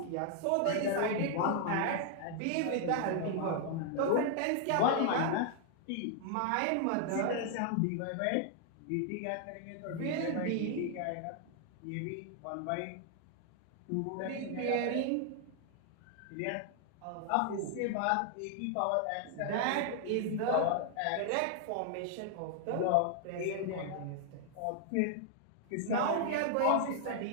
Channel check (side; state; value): both; different; correlation 0.00